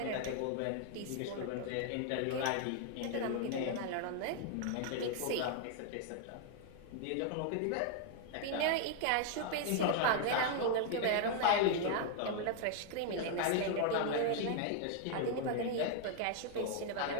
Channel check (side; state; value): both; different; correlation 0.00